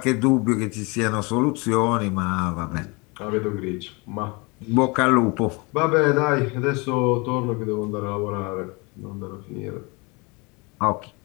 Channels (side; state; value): right; quieter; 28.1 dB